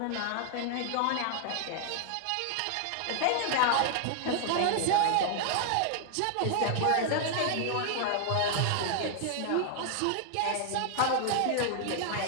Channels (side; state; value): both; different; correlation 0.00